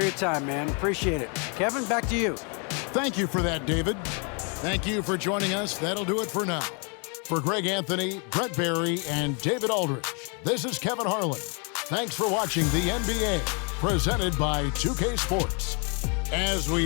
time, man. Appreciate it. Kevin, back to you. Thank you for that, David. Thank you for joining us. That'll do it for now. For Greg Anthony, Brett Barry, and David Aldridge, this is Kevin Harlan. Thanks for watching the NBA, presented by 2K Sports. As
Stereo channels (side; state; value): right; quieter; 35.8 dB